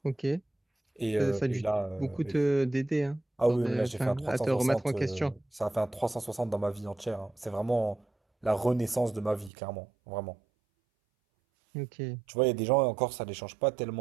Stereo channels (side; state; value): left; drops out; at 9.5 s